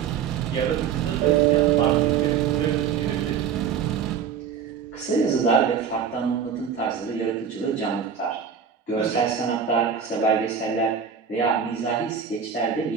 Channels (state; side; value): quieter; left; 7.3 dB